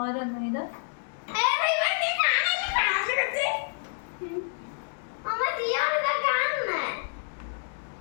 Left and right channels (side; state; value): right; silent; digital silence